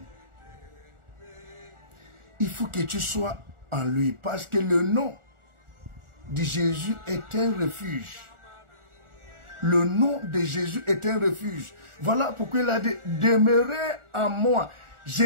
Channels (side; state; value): left; late; 1.4 ms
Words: Il faut que tu sois en lui, parce que le nom de Jésus est un refuge. Le nom de Jésus est un refuge. Voilà pourquoi il a dit, demeurez en moi.